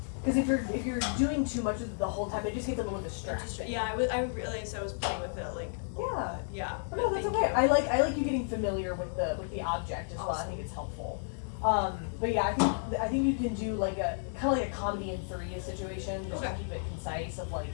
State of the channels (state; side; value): silent; right; digital silence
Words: Because if you're doing too much of it the whole time, it just gets a little distracting. Yeah, I realized I was playing with it like a Yeah. lot. Yeah. But no, that's thank okay. you. I like you getting familiar with the object as well. I Awesome. think it's helpful. But yeah, I think you can do like a kind of like a comedy in 3 situation, just to Okay. keep it concise. Of like,